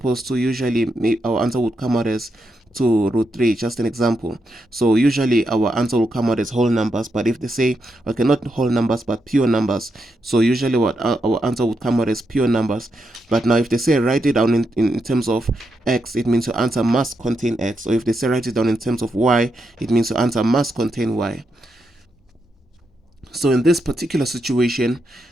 to usually our answer would come out as 2 root 3, just an example. So usually our answer will come out as whole numbers, but if they say, okay, not whole numbers but pure numbers, so usually what our answer would come out as pure numbers. But now if they say write it down in terms of x, it means your answer must contain x. Or if they say write it down in terms of y, it means your answer must contain y. So in this particular situation,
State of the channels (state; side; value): normal; both; correlation 0.83